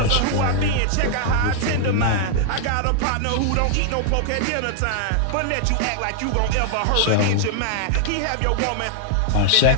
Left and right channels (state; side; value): different; both; correlation 0.00